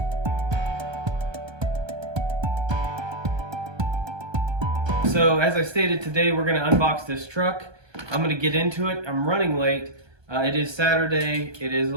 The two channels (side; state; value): left; late; 1.2 ms